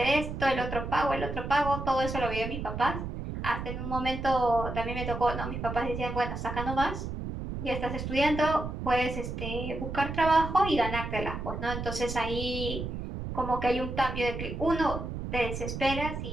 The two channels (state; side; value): noise; right; rumble, 6 dB below the sound